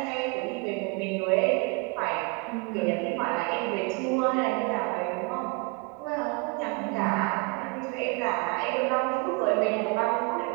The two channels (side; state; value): left; quieter; 30.3 dB